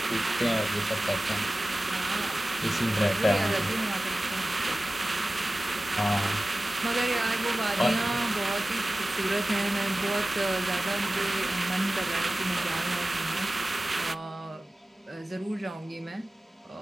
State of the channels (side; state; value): both; normal; correlation 0.96